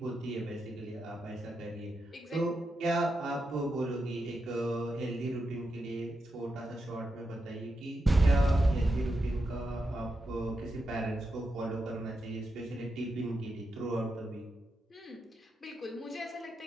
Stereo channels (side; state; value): both; normal; correlation 0.86